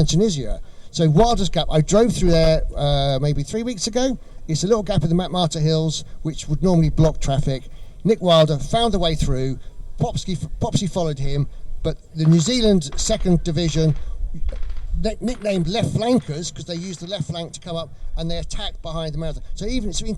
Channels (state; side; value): identical; both; correlation 1.00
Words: Tunisia. So Wilder's Gap, I drove through there maybe 3 weeks ago. It's a little gap in the Matmata Hills, which would normally block traffic. Nick Wilder found a way through. Popsky followed him, but the New Zealand 2nd Division, nicknamed left flankers because they used the left flank to come up and they attacked behind the marathon. So even in